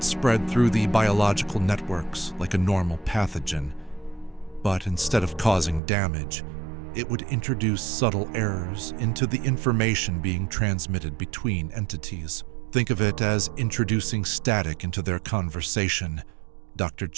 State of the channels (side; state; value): left; drops out; at 5.8 s